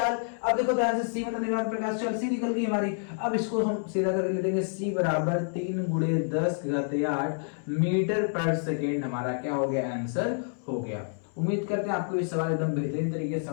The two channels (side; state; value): right; silent; 59 dB below the other